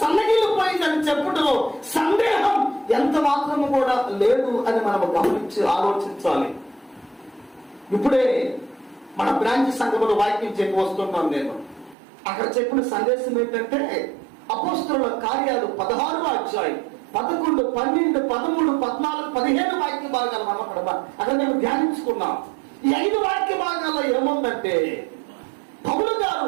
సన్నగిలిపోయిందని చెప్పుటలో సందేహం ఎంత మాత్రము కూడా లేదు అని మనం గమనించి ఆలోచించాలి. ఇప్పుడే మన బ్రాంచ్ సంఘంలో వాక్యం చెప్పి వస్తున్నాను నేను. అక్కడ చెప్పిన సందేశం ఏంటంటే, అపోస్తలుల కార్యాలు 16వ అధ్యాయం 11, 12, 13, 14, 15 వాక్య భాగాలు మనం అక్కడ మేము ధ్యానించుకున్నాం. ఈ 5 వాక్య భాగాల్లో ఏముందంటే, పౌలు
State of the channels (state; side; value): drops out; left; at 12.0 s